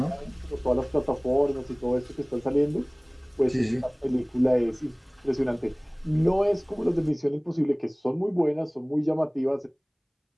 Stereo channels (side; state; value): both; identical; correlation 1.00